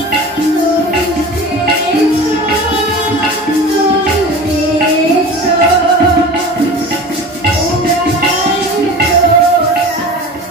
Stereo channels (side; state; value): both; normal; correlation 0.35